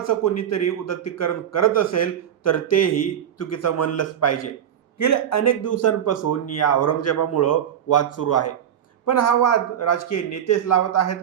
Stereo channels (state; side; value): quieter; left; 9.6 dB